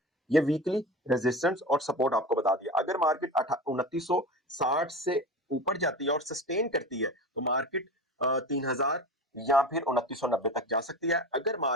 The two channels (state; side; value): normal; both; correlation 0.30